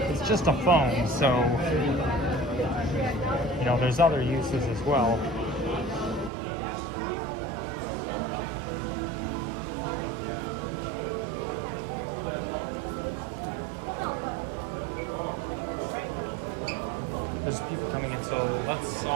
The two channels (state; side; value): drops out; left; at 6.3 s